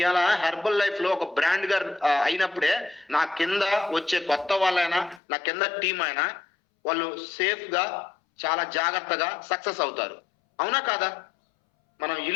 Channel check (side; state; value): right; drops out; at 5.2 s